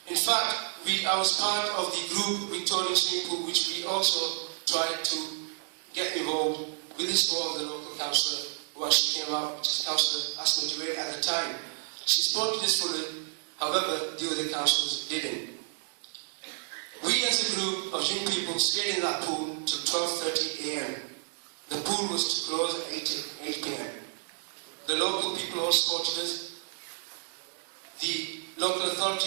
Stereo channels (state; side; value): silent; left; digital silence